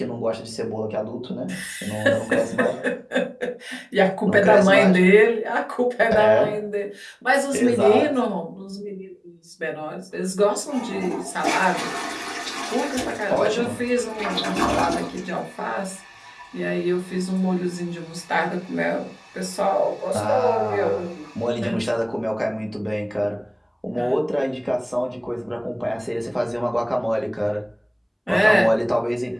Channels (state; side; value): identical; both; correlation 1.00